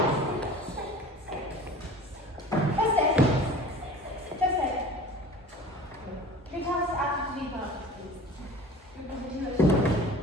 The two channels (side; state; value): both; normal; correlation 0.41